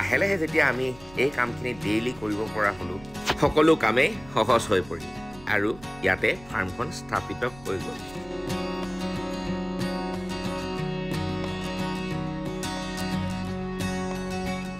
লাহে যেতিয়া আমি এই কামখিনি ডেইলি কৰিব পৰা হ'লোঁ, সকলো কামেই সহজ হৈ পৰিল আৰু ইয়াতে ফাৰ্মখন স্থাপিত হৈ গ'ল।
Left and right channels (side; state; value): right; noise; rumble, 21 dB below the sound